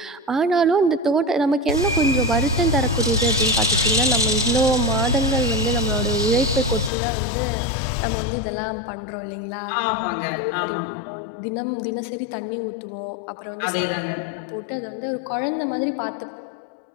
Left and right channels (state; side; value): drops out; right; at 6.9 s